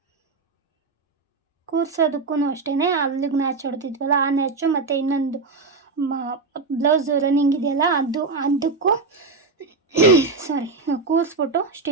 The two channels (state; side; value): quieter; left; 4.1 dB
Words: ಕೂರ್ಸೋದಕ್ಕೂ ಅಷ್ಟೇ, ಅಲ್ಲಿಗೆ ನ್ಯಾಚ್ ಹೊಡೆದಿದ್ವಲ್ಲ ಆ ನ್ಯಾಚು ಮತ್ತು ಇನ್ನೊಂದು ಬ್ಲೌಸ್ ರನ್ನಿಂಗ್ ಇದೆಯಲ್ಲ ಅದಕ್ಕೂ ಕೂರಿಸ್ಬಿಟ್ಟು